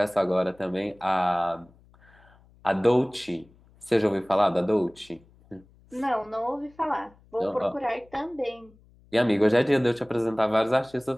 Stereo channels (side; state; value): left; noise; hum, 29 dB below the sound